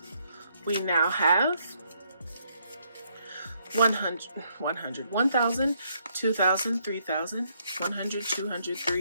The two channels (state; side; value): inverted; both; correlation -0.73